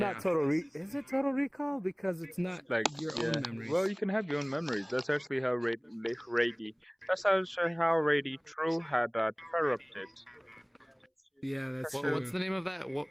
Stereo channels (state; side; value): identical; both; correlation 1.00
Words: Total Recall. Is it Total Recall? Because it's not Like your own memories. Well, you can have your own memories. That's actually how Rady. That's actually how Rady True had corrupted. Yeah, that's true. What's the name of that?